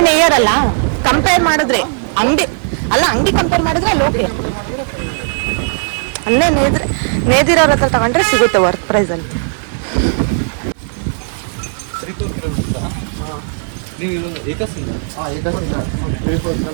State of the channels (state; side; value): silent; left; 69 dB below the other